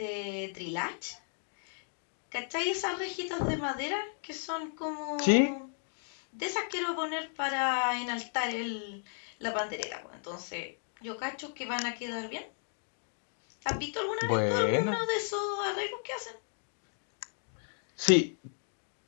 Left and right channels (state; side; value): silent; right; digital silence